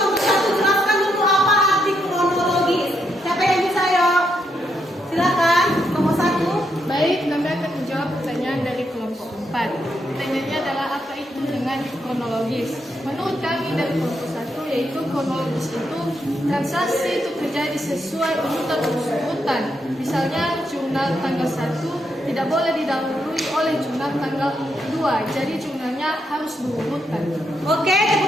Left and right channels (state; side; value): normal; both; correlation 0.79